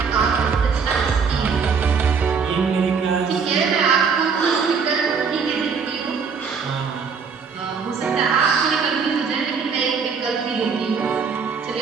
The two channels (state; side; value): quieter; left; 5.7 dB